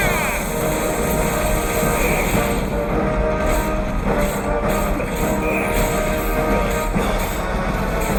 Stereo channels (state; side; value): identical; both; correlation 1.00